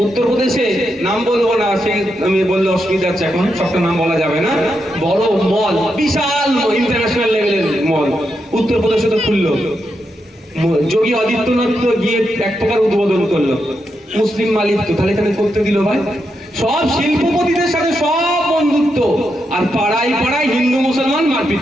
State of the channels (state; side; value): normal; both; correlation 0.84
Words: উত্তরপ্রদেশে নাম বলবো না, সে আমি বললে অসুবিধা আছে, এখন সবটা নাম বলা যাবে না। বড় মল, বিশাল ইন্টারন্যাশনাল লেভেলের মল উত্তরপ্রদেশে তো খুললো। যোগী আদিত্যনাথ তো গিয়ে এক প্রকার উদ্বোধন করলো, মুসলিম মালিক তো, তাহলে এখানে করতে দিল ভাই। সব শিল্পপতিদের সাথে সব বন্ধুত্ব, আর পাড়ায় পাড়ায় হিন্দু মুসলমান মারপিট